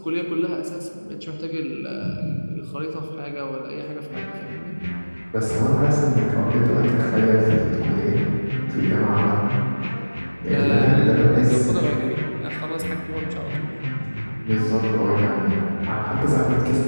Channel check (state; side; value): inverted; both; correlation -1.00